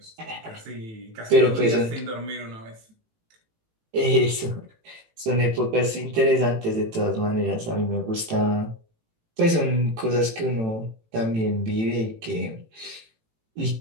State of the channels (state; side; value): late; left; 18 ms